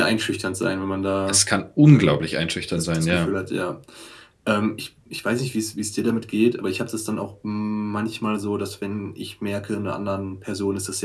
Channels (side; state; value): both; identical; correlation 1.00